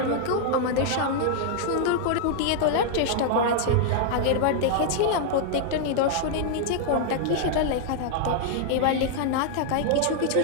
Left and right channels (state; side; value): different; both; correlation -0.01